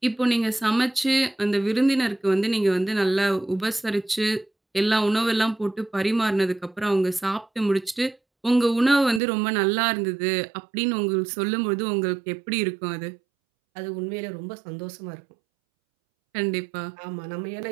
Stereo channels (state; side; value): drops out; left; at 9.2 s